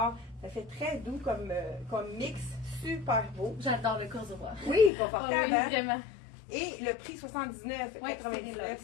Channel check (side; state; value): right; drops out; at 4.9 s